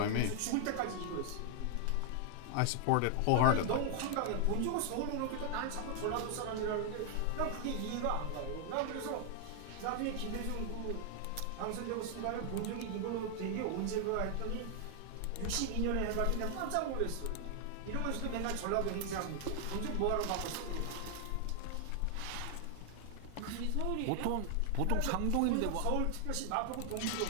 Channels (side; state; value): both; different; correlation 0.00